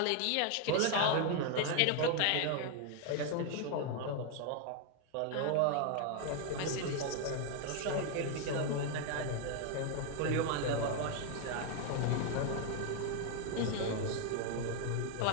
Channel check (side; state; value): both; different; correlation 0.00